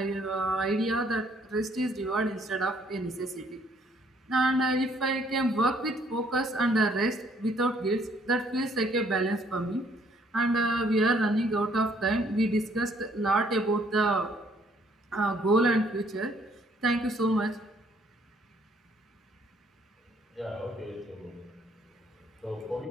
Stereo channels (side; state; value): both; normal; correlation 0.64